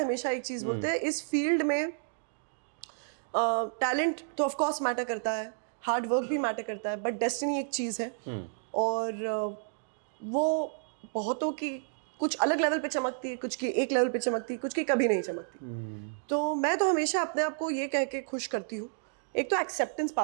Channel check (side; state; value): left; silent; digital silence